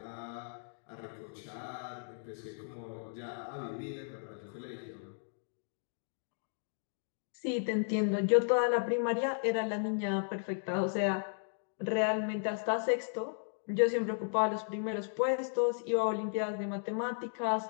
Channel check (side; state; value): right; silent; digital silence